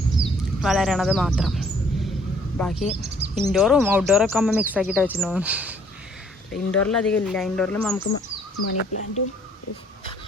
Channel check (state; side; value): normal; both; correlation 0.61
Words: വളരണത് മാത്രം. ബാക്കി ഇൻഡോറും ഔട്ട്ഡോറൊക്കെ അമ്മ മിക്സ് ആക്കിയിട്ട് വെച്ചിട്ടുണ്ടോ. ഇൻഡോറിൽ അധികം ഇല്ല. ഇൻഡോറിൽ നമുക്ക് മണി പ്ലാന്റും